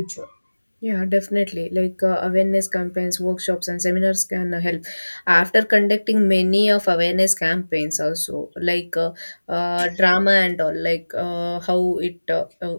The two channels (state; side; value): inverted; both; correlation -1.00